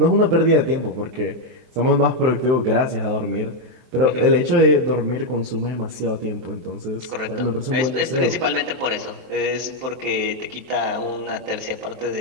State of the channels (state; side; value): late; left; 23 ms